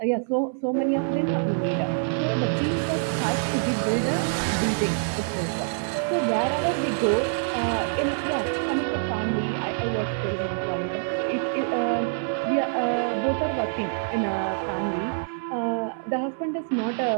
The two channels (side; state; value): left; silent; 61 dB below the other